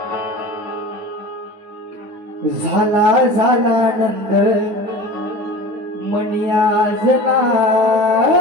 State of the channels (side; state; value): left; late; 9.3 ms